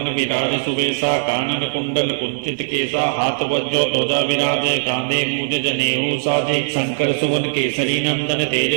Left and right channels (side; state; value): left; silent; digital silence